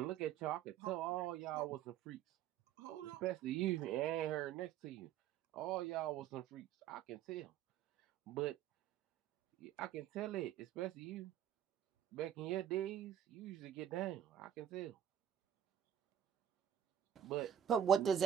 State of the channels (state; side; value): quieter; left; 9.8 dB